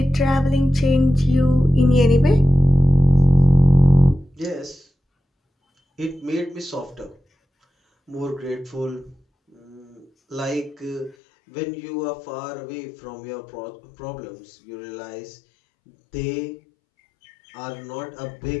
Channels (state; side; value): drops out; right; at 11.2 s